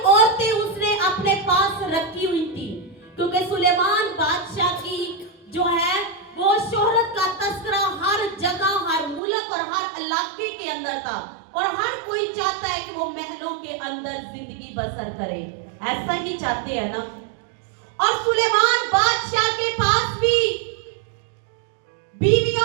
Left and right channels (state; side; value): drops out; left; at 9.2 s